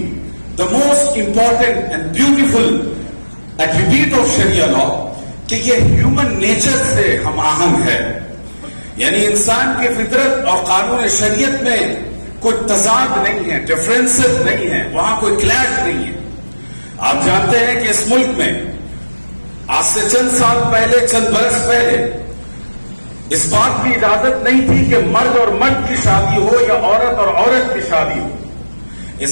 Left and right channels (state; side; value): inverted; both; correlation -1.00